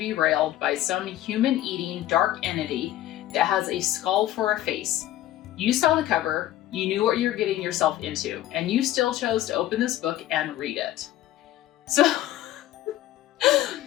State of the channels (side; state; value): right; quieter; 13.8 dB